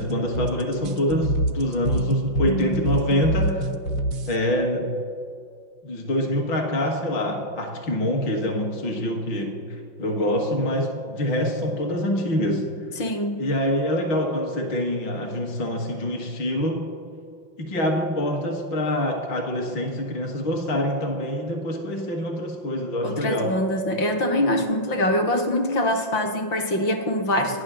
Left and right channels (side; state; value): right; late; 5.7 ms